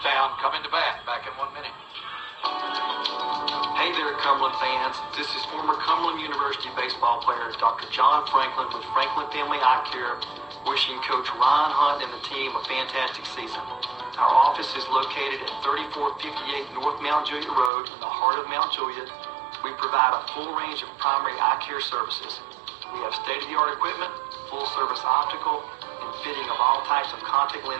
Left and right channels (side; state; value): left; drops out; at 17.7 s